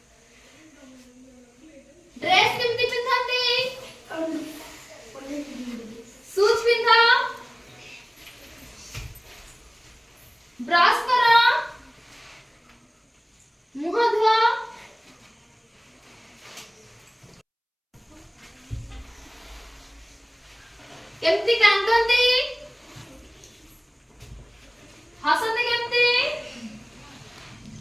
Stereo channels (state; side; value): identical; both; correlation 1.00